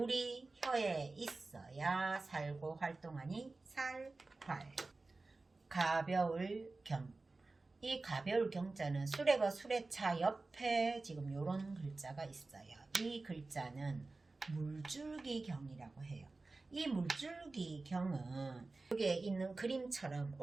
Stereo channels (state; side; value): quieter; left; 3.5 dB